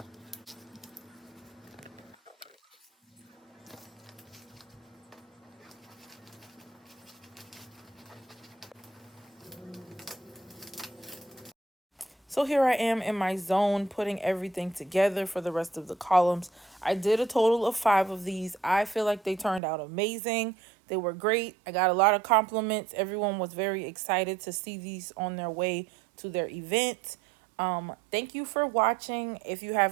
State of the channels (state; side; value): drops out; left; at 19.6 s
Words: So here I am in my zone, putting everything together for the rest of the columns. I did a total of 5 of these. I feel like they turned out amazing. They were great. I got a lot of compliments. Everyone was very excited to see these on their way to their event. Thank you for watching. If you